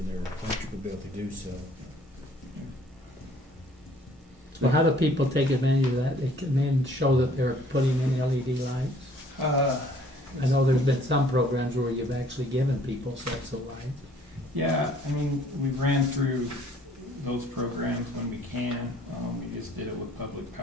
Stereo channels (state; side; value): normal; both; correlation 0.58